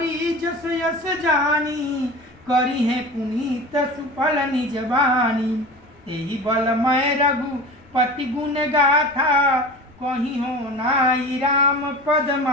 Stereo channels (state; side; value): noise; left; rumble, 28 dB below the sound